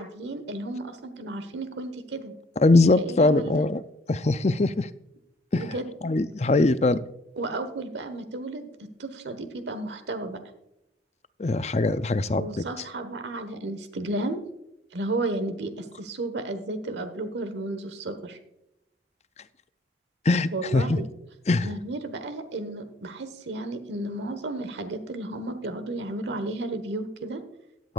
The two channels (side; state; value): both; normal; correlation 0.58